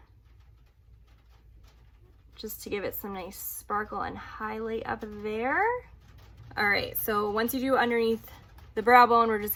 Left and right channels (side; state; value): both; identical; correlation 1.00